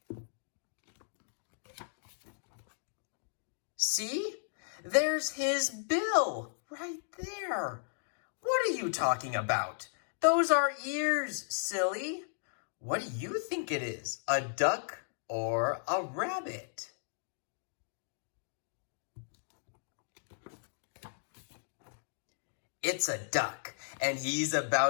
See? There's his bill right there. What are you talking about? Those are ears, silly. What do you think it is? A duck or a rabbit? It's a duck, and he's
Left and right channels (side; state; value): right; silent; digital silence